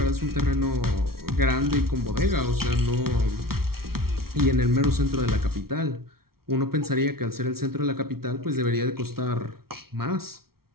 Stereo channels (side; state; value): left; late; 0.94 ms